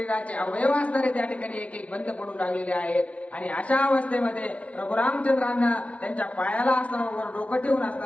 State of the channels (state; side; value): late; right; 0.064 ms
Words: अवयव असणारे त्या ठिकाणी एक एक बंद पडू लागलेले आहेत. आणि अशा अवस्थेमध्ये प्रभू रामचंद्रांना त्यांच्या पायाला असणारं डोकं ठेवून